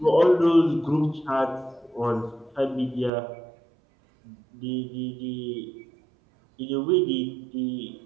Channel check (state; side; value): drops out; left; at 3.1 s